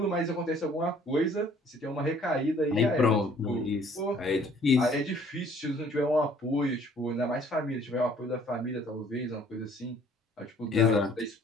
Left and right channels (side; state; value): both; normal; correlation 0.58